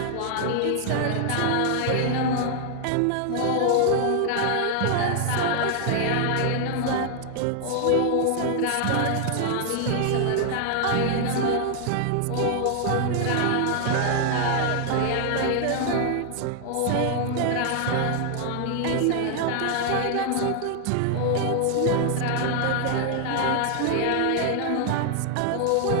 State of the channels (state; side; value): different; both; correlation 0.00